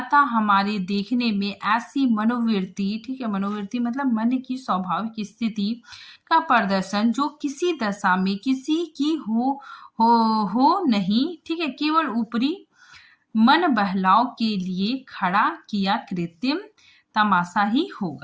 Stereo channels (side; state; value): both; identical; correlation 1.00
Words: हमारे देखने में ऐसी मनोवृत्ति, ठीक है, मनोवृत्ति मतलब मन की स्वाभाविक स्थिति का प्रदर्शन जो किसी दशा में किसी की हो नहीं, ठीक है, केवल ऊपरी मन बहलाव के लिए खड़ा किया कृत्रिम तमाशा ही